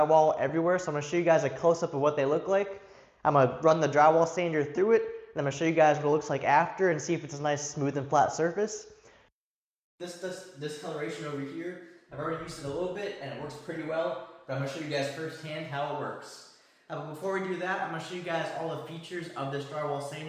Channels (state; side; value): identical; both; correlation 1.00